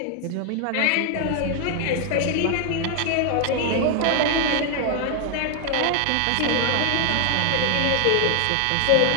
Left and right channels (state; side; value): different; both; correlation 0.00